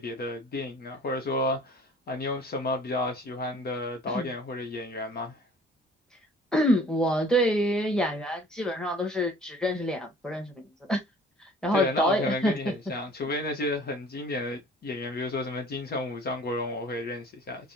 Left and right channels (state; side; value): normal; both; correlation 0.50